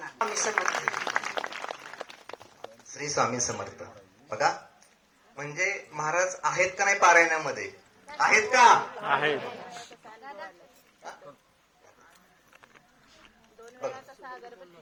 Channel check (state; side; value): identical; both; correlation 1.00